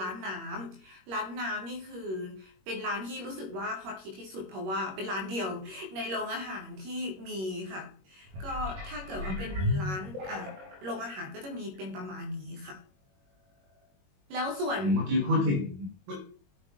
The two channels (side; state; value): left; late; 21 ms